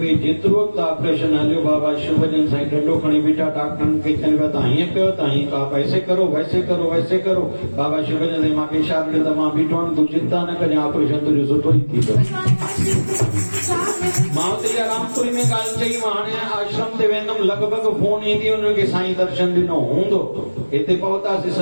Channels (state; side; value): inverted; both; correlation -1.00